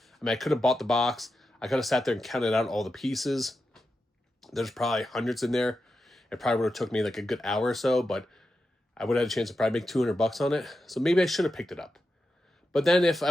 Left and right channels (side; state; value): both; normal; correlation 0.89